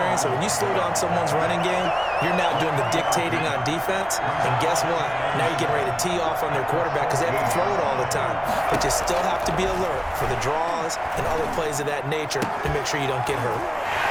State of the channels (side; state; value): both; identical; correlation 1.00